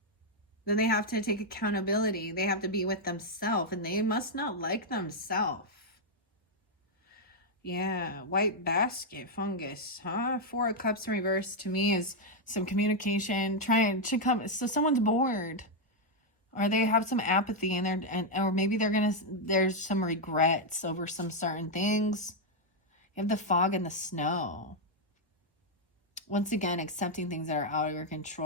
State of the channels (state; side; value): normal; both; correlation -0.01